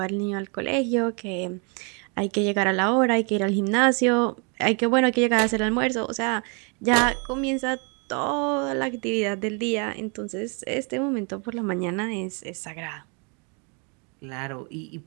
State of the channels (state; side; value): quieter; left; 35.2 dB